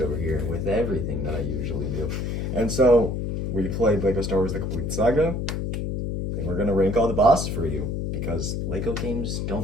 over here with everything that I usually do. And so we played Lego Star Wars The Complete Saga, and we're gonna rank all the bosses for you because Lego games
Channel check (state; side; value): noise; left; hum, 2 dB below the sound